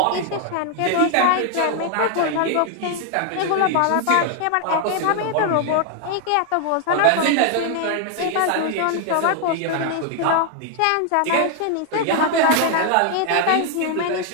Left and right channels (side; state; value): both; different; correlation 0.00